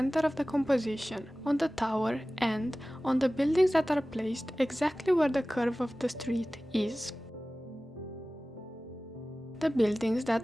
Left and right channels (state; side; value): normal; both; correlation 0.97